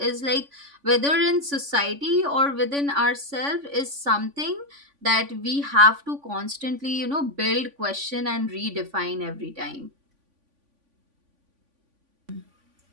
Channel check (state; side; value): late; left; 3.5 ms